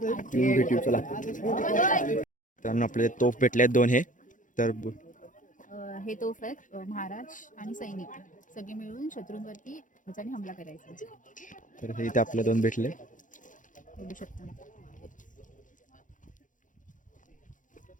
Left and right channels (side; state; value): right; late; 0.38 ms